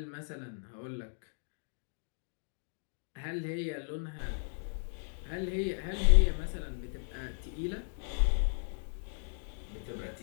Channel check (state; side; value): silent; right; digital silence